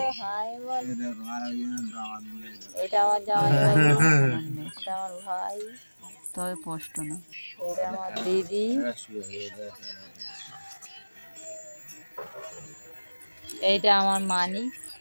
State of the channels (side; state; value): both; inverted; correlation -1.00